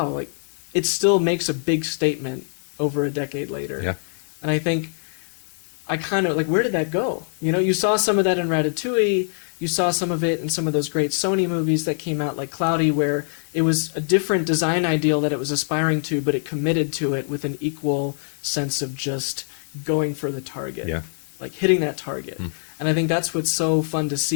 like it still makes a big statement over a decade later. Yeah. And I think I kind of like, where did that go? You saw some of that in Ratatouille. You saw some of it in some of those great Sony movies that came out, like Cloudy, where it was a different design ideal that it was aspiring to, but it committed to it with an equal sense of just going for the target, like hitting that target. And I think that's what's so fun to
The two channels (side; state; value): right; silent; digital silence